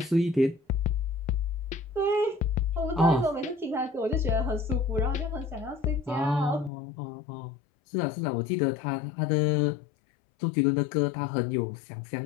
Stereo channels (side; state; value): right; drops out; at 6.7 s